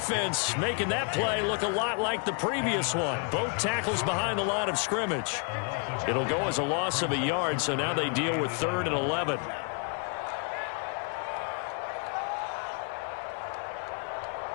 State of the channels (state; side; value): quieter; right; 38.7 dB